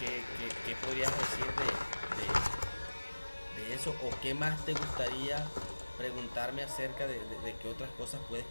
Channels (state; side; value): inverted; both; correlation -1.00